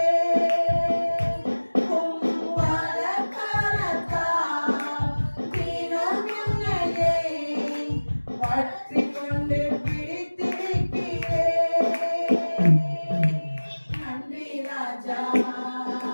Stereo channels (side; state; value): both; inverted; correlation -1.00